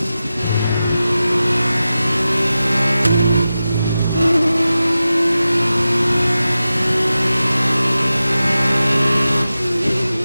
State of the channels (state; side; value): inverted; both; correlation -0.94